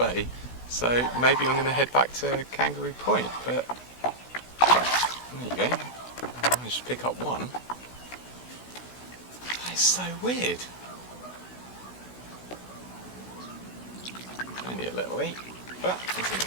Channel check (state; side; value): late; right; 16 ms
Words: so maybe I'm going to head back to Kangaroo Point, but there you go. I managed to pick up one. That is so weird. Only a little eat, but